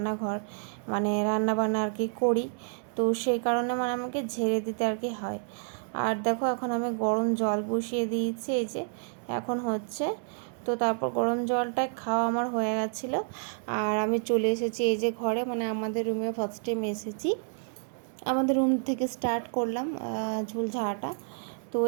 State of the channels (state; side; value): silent; left; digital silence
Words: মানে রান্নাবান্না আর কি করি। তো সেই কারণে মানে আমাকে ঝেড়ে দিতে আর কি হয়। আর দেখো এখন আমি গরম জল বসিয়ে দিয়েছি, এই যে এখন হচ্ছে। তো তারপর গরম জলটা খাওয়া আমার হয়ে গেছিলো। আর আমি চলে এসেছি এই যে ঘরে, মানে আমাদের রুমে ফার্স্ট টাইম এসেছি। আমাদের রুম থেকে স্টার্ট করলাম ঝুল ঝাড়াটা। তো